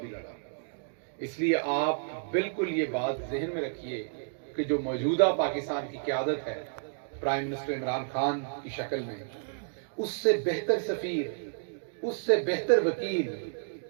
بھی لڑا۔ اس لیے آپ بالکل یہ بات ذہن میں رکھیے کہ جو موجودہ پاکستان کی قیادت ہے پرائم منسٹر عمران خان کی شکل میں، اس سے بہتر سفیر، اس سے بہتر وکیل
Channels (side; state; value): left; silent; digital silence